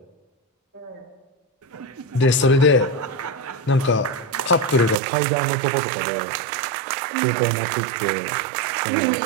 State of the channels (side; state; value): left; drops out; at 5.0 s